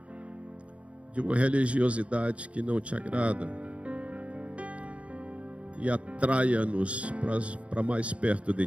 de uma religiosidade que não te agrada, e atraia-nos para mais perto de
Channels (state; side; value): late; left; 0.062 ms